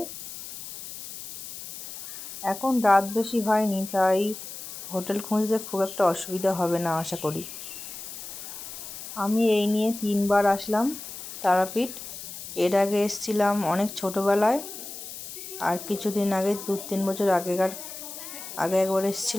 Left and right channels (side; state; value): left; noise; hiss, 11 dB below the sound